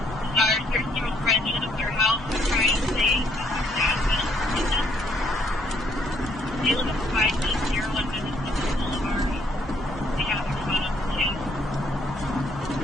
Our 13-year-old friend showed up at their house and trying to say they live at 5801 Minnesota Boulevard. They have their phone up too.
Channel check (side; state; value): both; normal; correlation 0.69